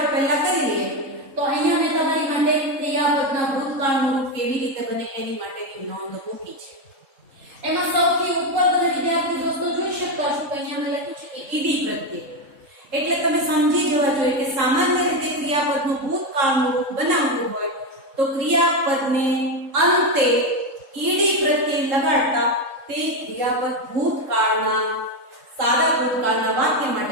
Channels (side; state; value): left; late; 3.7 ms